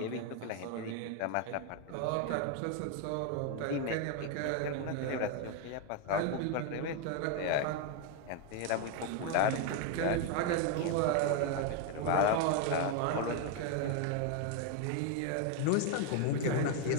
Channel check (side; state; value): both; different; correlation 0.01